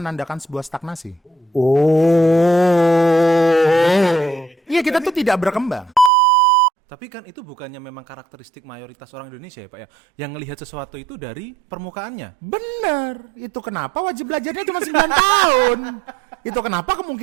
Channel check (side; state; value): left; drops out; at 6.1 s